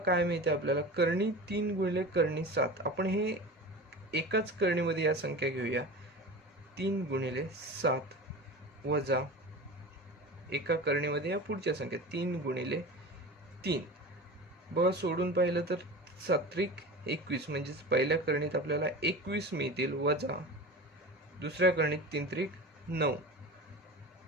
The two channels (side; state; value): both; normal; correlation 0.33